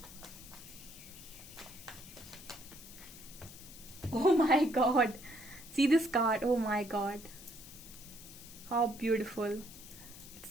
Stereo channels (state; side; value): noise; left; hiss, 16 dB below the sound